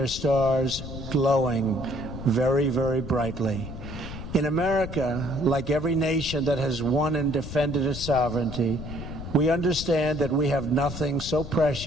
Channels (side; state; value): left; noise; rumble, 9 dB below the sound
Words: stars glowing very, very brightly. In America, like every nation that has won and defended its sovereignty, we understand that we have nothing so